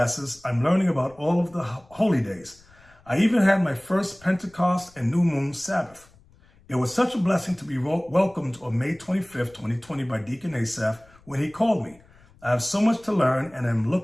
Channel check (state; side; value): noise; left; rumble, 28 dB below the sound